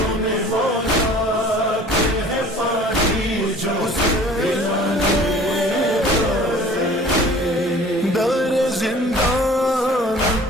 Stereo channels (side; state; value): both; normal; correlation 0.48